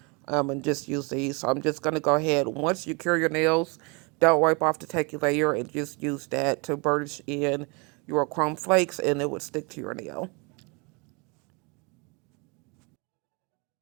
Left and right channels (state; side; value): quieter; left; 30.5 dB